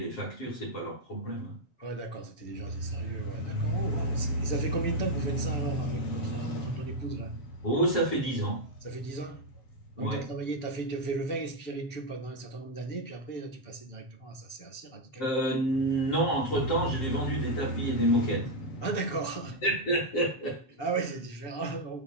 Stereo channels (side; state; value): right; late; 7.5 ms